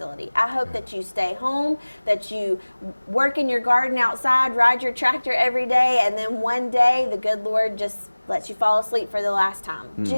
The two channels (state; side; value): inverted; both; correlation -1.00